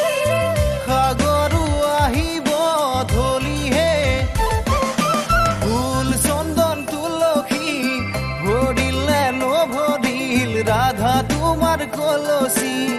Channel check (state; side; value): identical; both; correlation 1.00